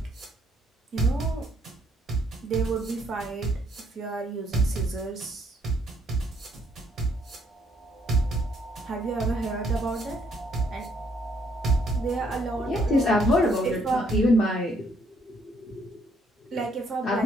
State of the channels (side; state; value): both; normal; correlation 0.68